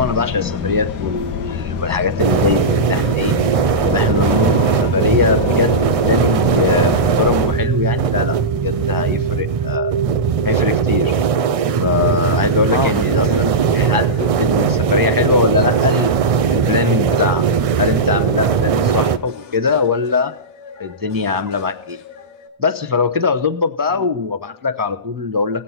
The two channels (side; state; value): left; late; 1.6 ms